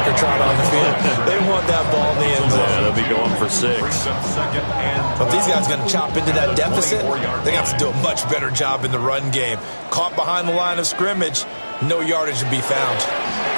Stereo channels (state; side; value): inverted; both; correlation -1.00